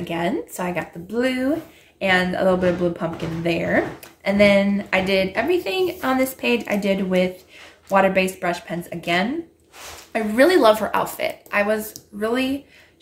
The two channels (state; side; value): identical; both; correlation 1.00